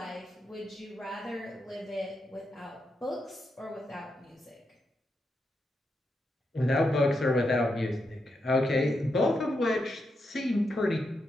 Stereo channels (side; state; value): both; normal; correlation 0.84